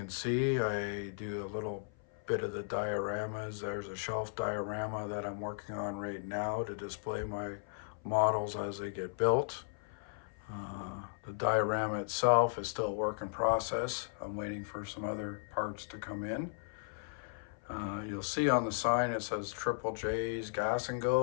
see, I do a little bit of the dioramas. There's a shelf diorama that I'm working on right now to display my models as they get built. The diorama itself is still a work in process. I'm waiting for some other parts to come in. You'll see on the sign it says Triple J's Gas and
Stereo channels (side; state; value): right; silent; 54 dB below the other